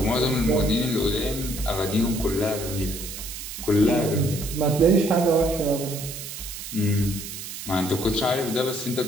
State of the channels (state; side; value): noise; right; hiss, 9 dB below the sound